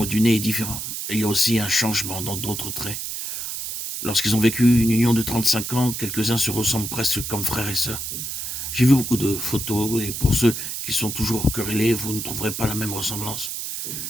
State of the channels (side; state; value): right; noise; hiss, 5 dB below the sound